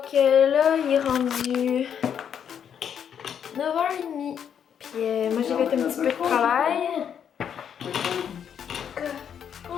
là, il est rendu 9h30. Puis moi, j'ai fait un petit peu de travail.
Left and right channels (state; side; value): quieter; right; 8.3 dB